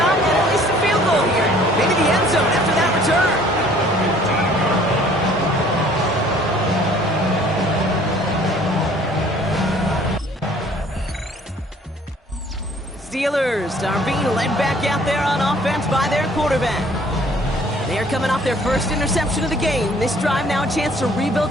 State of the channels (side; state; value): both; normal; correlation 0.56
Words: at least a field goal here. Maybe the end zone after that return. Steelers are being led back out there on offense by their quarterback. They are coming off their first interception of the game. This drive now a chance to